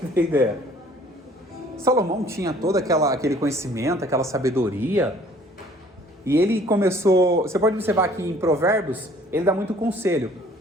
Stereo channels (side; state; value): both; normal; correlation 0.55